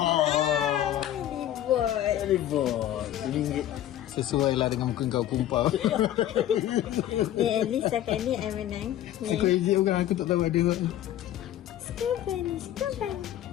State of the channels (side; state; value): right; quieter; 12.4 dB